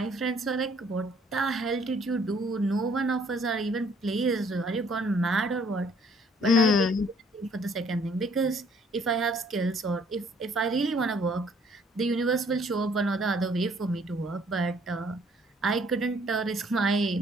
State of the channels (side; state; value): both; normal; correlation 0.61